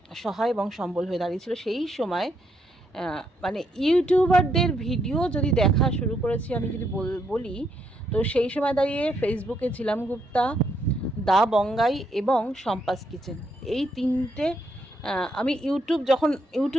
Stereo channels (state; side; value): normal; both; correlation 0.76